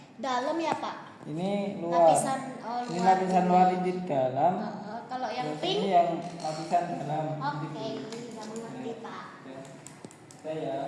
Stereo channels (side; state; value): both; identical; correlation 1.00